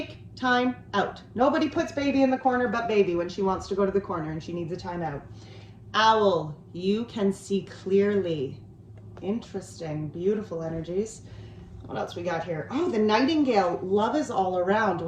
time out. Nobody puts baby in the corner but baby when she wants to go to the corner and she needs a time out. Owl, you can see clearly. Interesting, beautiful energies. What else we got here? Oh, the nightingale, love is all around.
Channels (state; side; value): identical; both; correlation 1.00